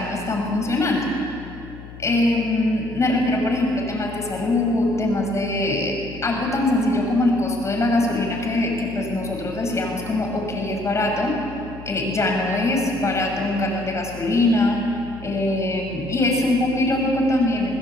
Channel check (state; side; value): noise; left; hum, 15 dB below the sound